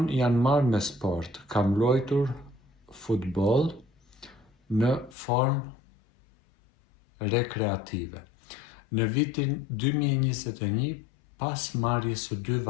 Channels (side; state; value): right; drops out; at 5.2 s